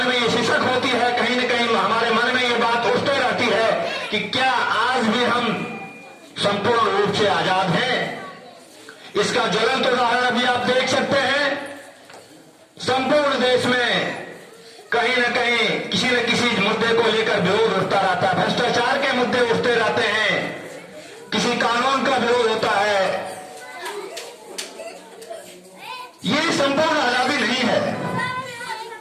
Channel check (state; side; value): identical; both; correlation 1.00